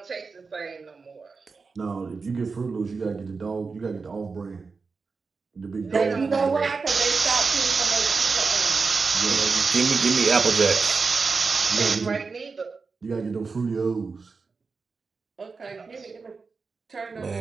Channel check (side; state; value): left; quieter; 4.6 dB